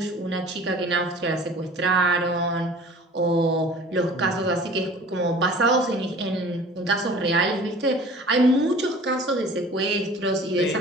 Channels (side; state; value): both; normal; correlation 0.45